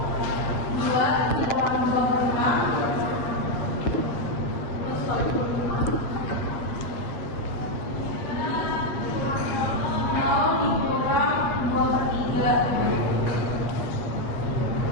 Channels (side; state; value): right; late; 8.0 ms